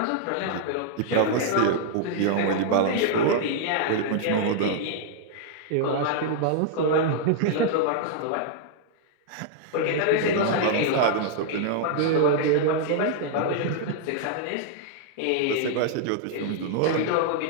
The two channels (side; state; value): both; different; correlation -0.01